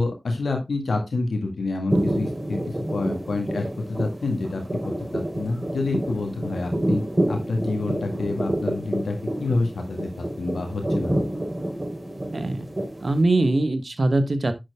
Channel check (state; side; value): normal; both; correlation 0.94